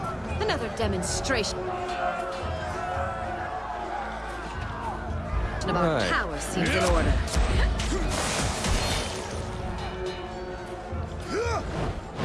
it. Another demonstration. About Right. power seems in order.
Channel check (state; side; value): identical; both; correlation 1.00